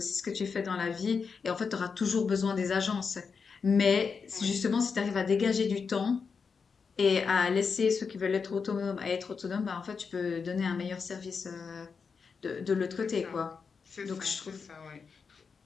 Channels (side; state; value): right; quieter; 5.5 dB